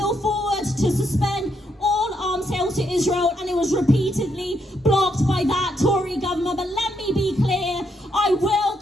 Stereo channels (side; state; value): both; normal; correlation 0.77